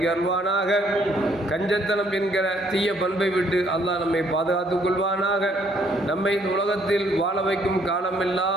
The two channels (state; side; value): normal; both; correlation 0.66